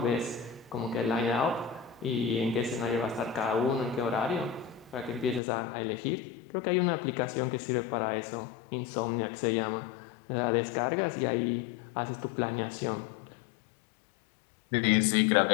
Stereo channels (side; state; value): right; drops out; at 5.4 s